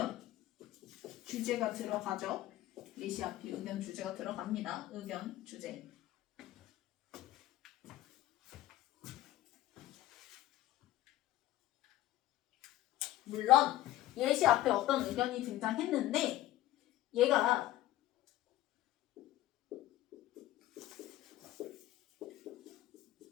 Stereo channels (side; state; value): right; quieter; 14.8 dB